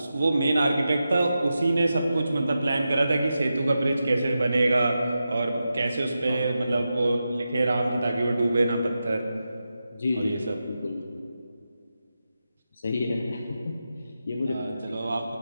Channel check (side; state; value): both; inverted; correlation -0.90